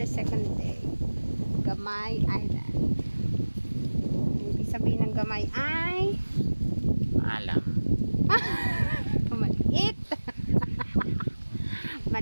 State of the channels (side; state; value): both; inverted; correlation -1.00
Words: second day. Gamay Island. Ibig sabihin ng Gamay ay Alam. maliit.